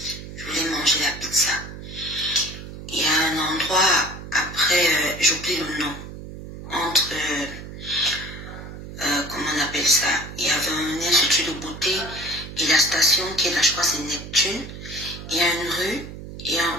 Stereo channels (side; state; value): right; noise; hum, 11 dB below the sound